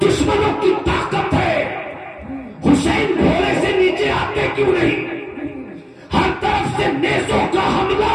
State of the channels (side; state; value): both; identical; correlation 1.00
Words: की ताकत है, हुसैन घोड़े से नीचे आते क्यों नहीं? हर तरफ से नेज़ों का हमला